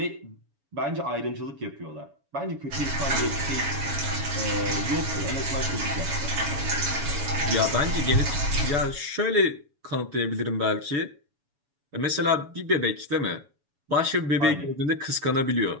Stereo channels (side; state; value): left; late; 7.1 ms